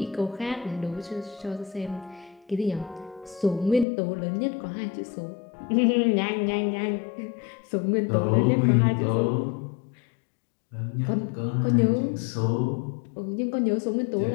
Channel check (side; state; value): right; drops out; at 3.9 s